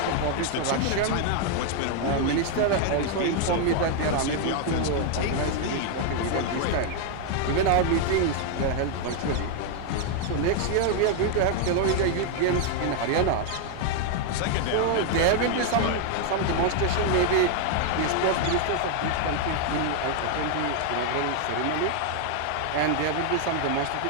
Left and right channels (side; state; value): both; different; correlation 0.00